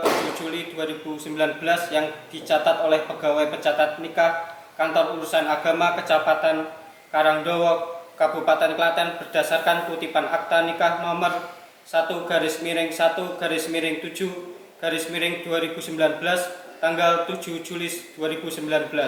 Juli 2019 yang dicatat oleh pegawai pencatat nikah Kantor Urusan Agama Kecamatan Karangdowo, Kabupaten Klaten berdasarkan kutipan akta nikah nomor 1/7/2019 tanggal 7 Juli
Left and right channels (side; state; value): both; identical; correlation 1.00